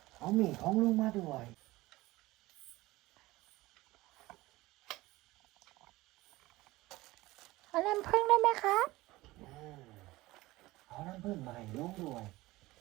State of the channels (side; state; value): left; quieter; 19.2 dB